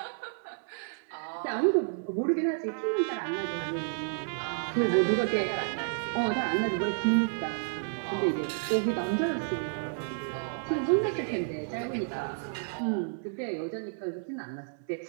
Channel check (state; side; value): silent; left; 56 dB below the other